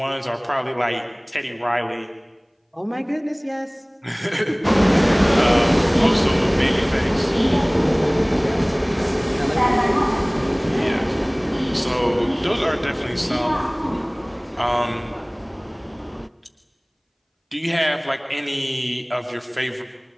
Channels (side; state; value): both; identical; correlation 1.00